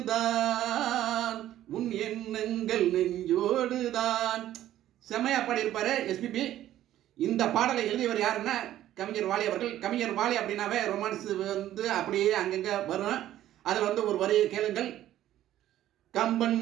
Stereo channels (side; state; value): left; quieter; 12.9 dB